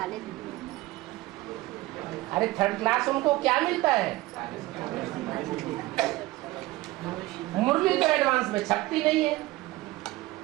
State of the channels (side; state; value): left; quieter; 19.1 dB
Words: अरे थर्ड क्लास उनको क्या मिलता है? मुरली तो एडवांस में छपती नहीं है,